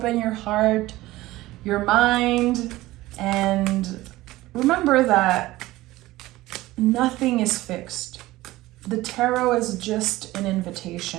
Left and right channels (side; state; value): left; quieter; 17.7 dB